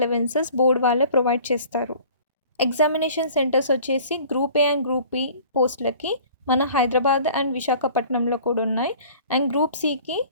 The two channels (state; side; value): inverted; both; correlation -0.48